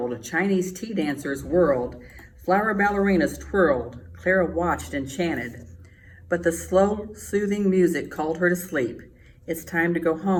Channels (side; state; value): both; identical; correlation 1.00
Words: Chinese tea dancers whirled, flower ballerinas twirled. Clara watched and chanted. But the slow, soothing music called her to sleep. "It's time to go